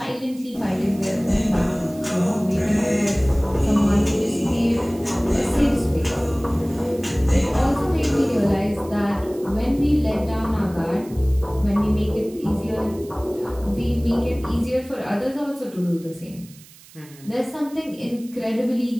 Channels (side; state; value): right; noise; hiss, 23 dB below the sound